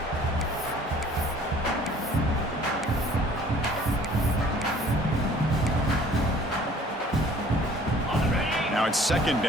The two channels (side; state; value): both; normal; correlation 0.53